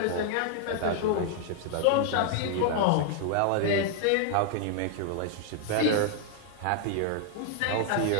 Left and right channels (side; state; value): both; different; correlation 0.00